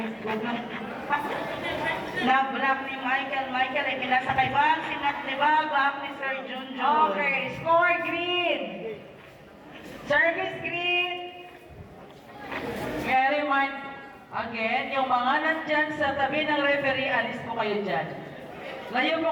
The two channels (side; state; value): both; identical; correlation 1.00